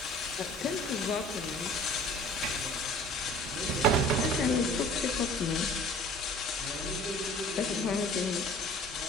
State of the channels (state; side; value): normal; both; correlation 0.47